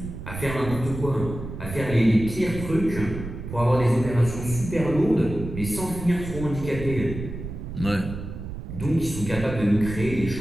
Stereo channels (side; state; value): right; noise; rumble, 8 dB below the sound